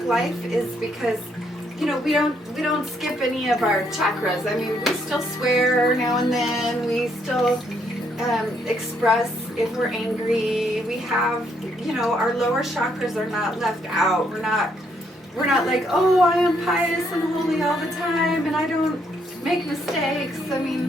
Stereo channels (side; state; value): both; normal; correlation 0.72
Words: life is because, you know, we don't skip any of our chakras. I mean, we still swear now and then. We still express if we're angry. We have, you know, our lower chakras are not left out. We're not like, oh, I am pious and holy all the time and I don't make mistakes. I